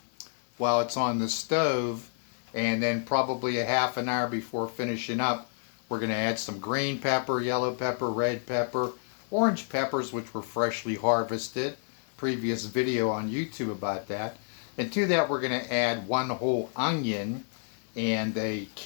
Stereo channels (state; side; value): silent; right; digital silence